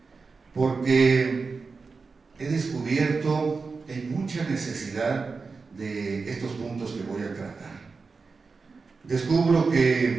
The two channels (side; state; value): left; quieter; 4.5 dB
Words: Porque he descubierto que hay mucha necesidad de estos puntos que voy a tratar. Descubro